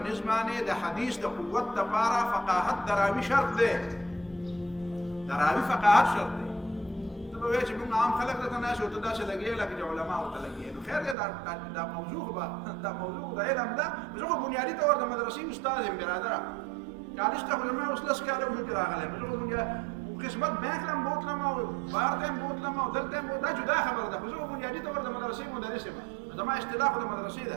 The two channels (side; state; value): left; drops out; at 11.2 s